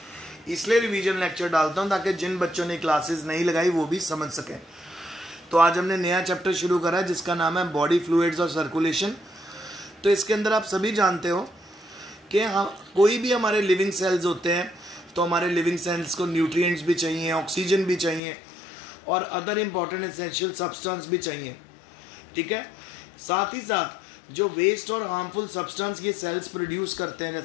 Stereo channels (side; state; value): right; drops out; at 18.2 s